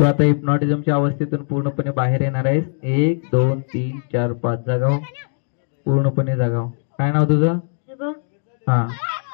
आता हिप्नॉटिझमच्या अवस्थेतून पूर्णपणे बाहेर येणार आहेस. 1 2 3 4 5 जागाव. पूर्णपणे जागाव. काय नाव तुझं? हा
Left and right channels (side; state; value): right; silent; digital silence